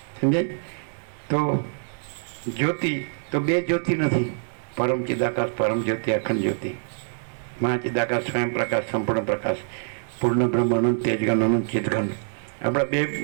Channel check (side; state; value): left; silent; digital silence